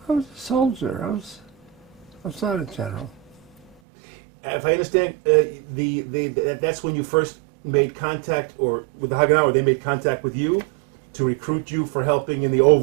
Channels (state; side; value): drops out; left; at 3.8 s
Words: I was a soldier. I was not a general. If I understand, that's when you first made contact, or with the Haganah, or they made contact with you to recruit you for helping in the